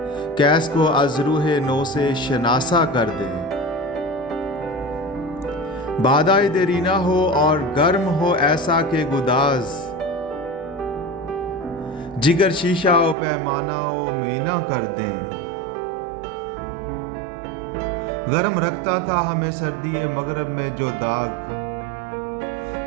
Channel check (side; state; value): left; drops out; at 13.2 s